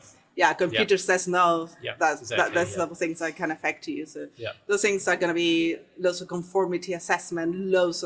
Computer says no. That's some things that can affect you. So those things are going to be lots of conformity assessment, loads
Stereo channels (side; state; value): both; identical; correlation 1.00